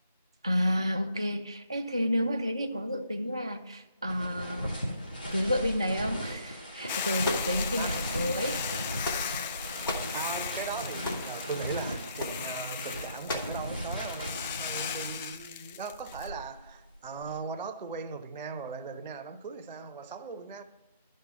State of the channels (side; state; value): both; inverted; correlation -0.69